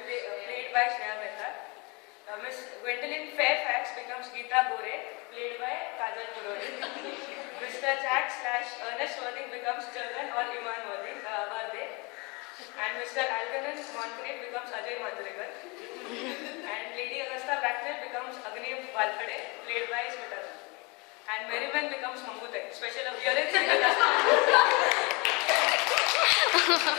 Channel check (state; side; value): quieter; right; 28.2 dB